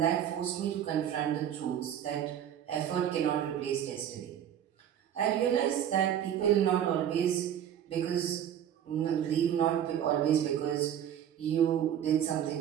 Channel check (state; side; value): quieter; left; 9.9 dB